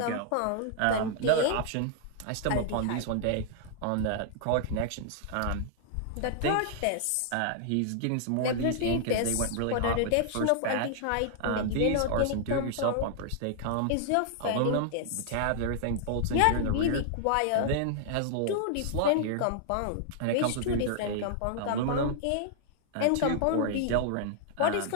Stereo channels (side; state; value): both; different; correlation -0.01